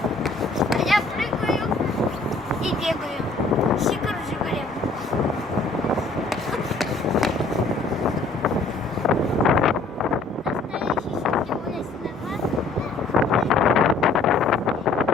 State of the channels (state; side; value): quieter; right; 3.6 dB